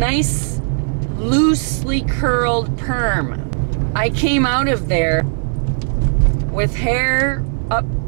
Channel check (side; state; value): left; silent; digital silence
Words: loosely curled perm. I came out of there with hair up